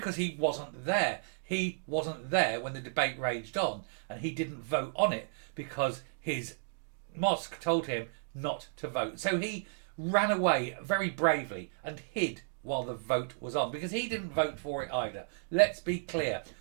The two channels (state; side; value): silent; left; digital silence